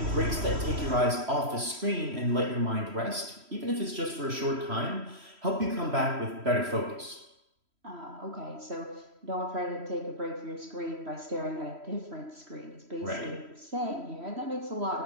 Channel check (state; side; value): late; left; 3.1 ms